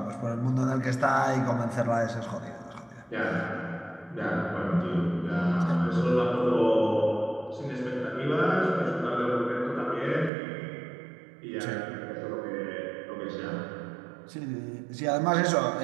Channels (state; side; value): drops out; left; at 10.3 s